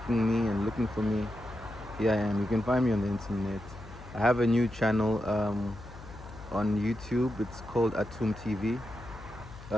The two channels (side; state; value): left; noise; hum, 15 dB below the sound